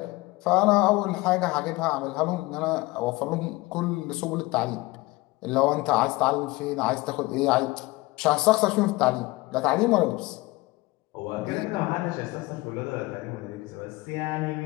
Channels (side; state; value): right; quieter; 21.6 dB